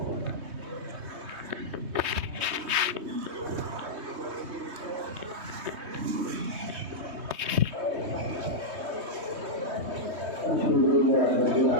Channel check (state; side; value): late; left; 3.2 ms